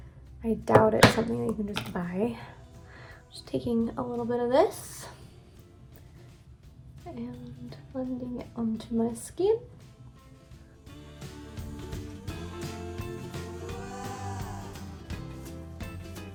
I doubt it's something that you can just buy. Just taking a little bit of this and blending it onto my skin.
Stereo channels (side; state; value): both; identical; correlation 1.00